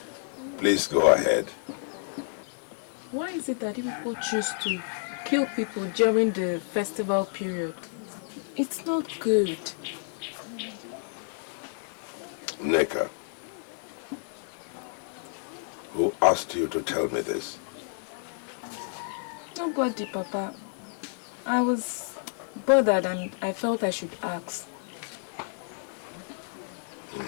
Please go ahead. Why is it that you people choose to kill people during the festival period? It's not good. Neka, who asked you to tell me this? Nobody, Papa. I was bothered and I felt I should ask.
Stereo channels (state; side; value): silent; right; digital silence